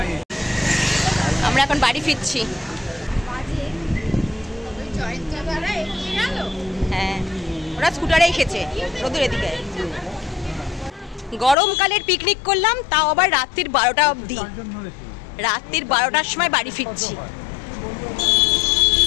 আমরা এখন বাড়ি ফিরছি। হ্যাঁ ওরা স্কুটারে এসেছে, রোদুর এদিকে। গরমকালের পিকনিক করলাম, তাও আবার রাত্রির 12টা অবধি। রাত্রির 12টার সময় বাড়ি ফিরছি।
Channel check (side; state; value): right; drops out; at 11.6 s